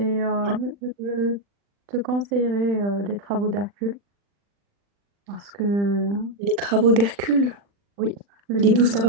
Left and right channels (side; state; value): left; late; 40 ms